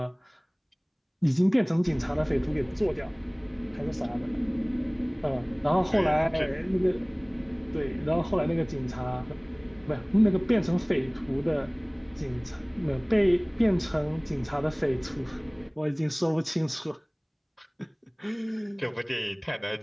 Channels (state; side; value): identical; both; correlation 1.00